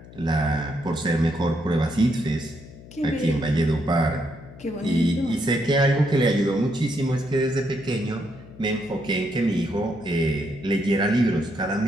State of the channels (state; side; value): noise; left; hum, 18 dB below the sound